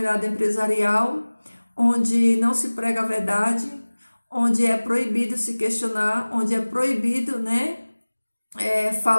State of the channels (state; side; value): inverted; both; correlation -1.00